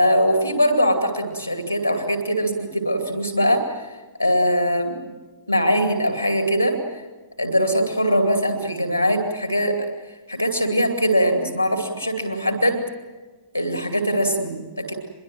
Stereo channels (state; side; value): inverted; both; correlation -0.80